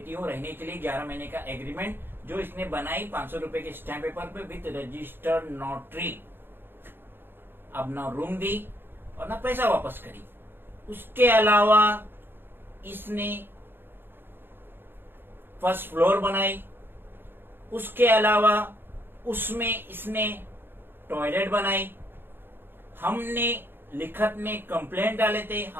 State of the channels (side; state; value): left; late; 0.10 ms